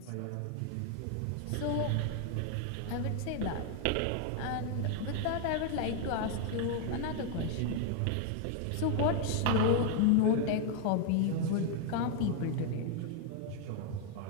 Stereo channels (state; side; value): different; both; correlation 0.00